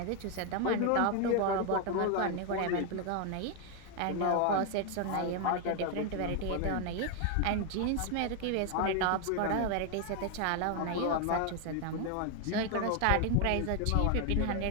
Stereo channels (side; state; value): both; different; correlation 0.00